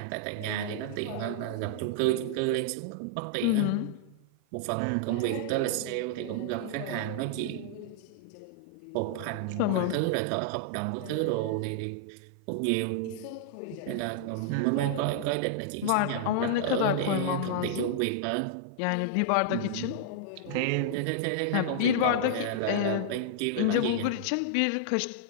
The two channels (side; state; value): both; different; correlation -0.01